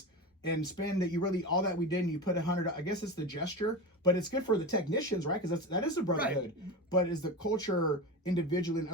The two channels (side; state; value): both; normal; correlation 0.24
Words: and spend all that we did, and you put 100, I guess it's the gesture, but it's good for the technicians, right? Because that is the brotherhood. Right. But is the culture individually and